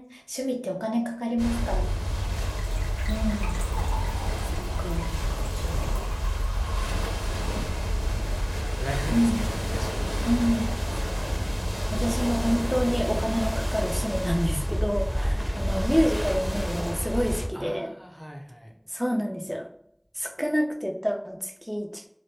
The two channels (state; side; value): identical; both; correlation 1.00